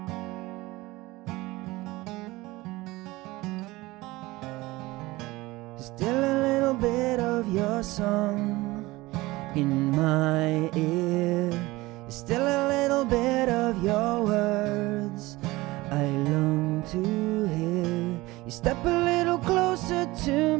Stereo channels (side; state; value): left; quieter; 20.3 dB